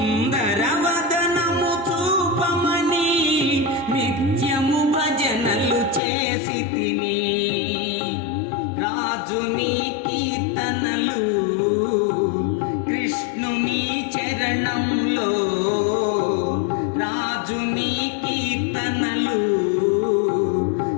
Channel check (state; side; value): drops out; right; at 6.0 s